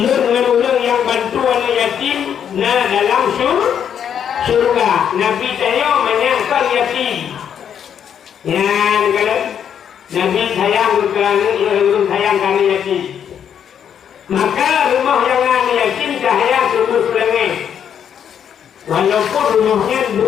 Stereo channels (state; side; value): quieter; right; 8.6 dB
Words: orang yang bantu anak yatim dalam surga. Nabi saya menyangkal yatim. Ya, kalau Nabi sayang orang sayang anak yatim. Maka rumah yang anak yatim cahaya tembus langit. Walaupun rumahnya